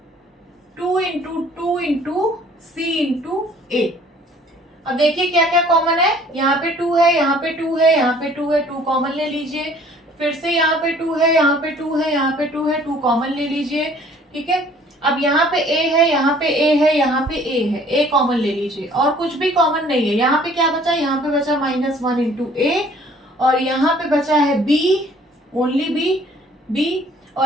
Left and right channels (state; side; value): normal; both; correlation 0.55